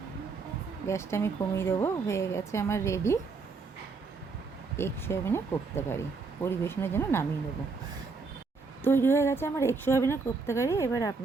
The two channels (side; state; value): left; quieter; 4.4 dB